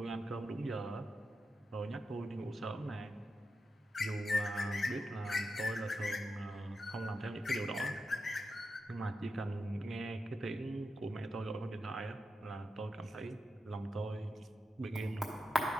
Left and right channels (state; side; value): normal; both; correlation 0.88